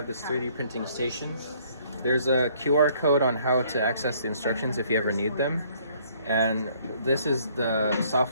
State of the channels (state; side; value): inverted; both; correlation -0.62